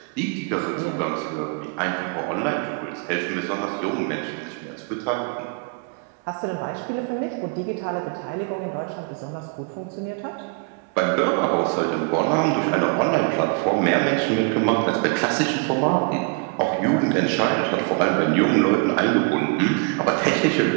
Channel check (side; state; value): left; quieter; 35.7 dB